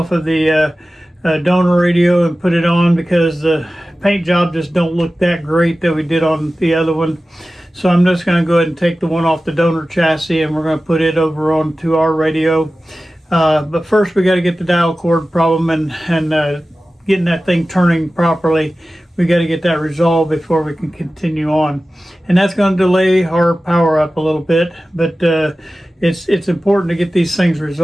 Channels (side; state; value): both; normal; correlation 0.96